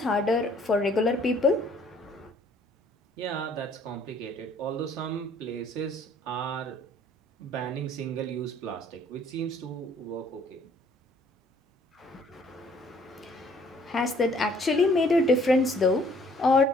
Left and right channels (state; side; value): normal; both; correlation 0.60